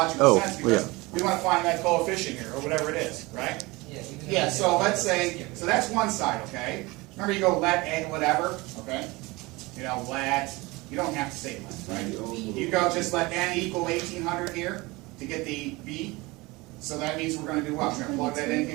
sense because yeah. we want to find that coefficient here, or whatever it is, right? Yeah. Yeah, so let's say, so that's one side, okay? Remember you go let n whatever, okay? You know, let You don't have to say length, right? You go just let n equal 1800 here to get the b. So that means we're going to do what? We're going to plug that in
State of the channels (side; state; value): left; quieter; 23.0 dB